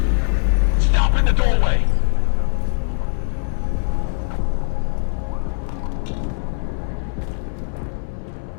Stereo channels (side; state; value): right; silent; 61 dB below the other